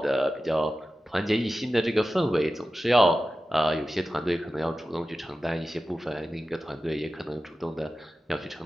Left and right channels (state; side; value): normal; both; correlation 0.94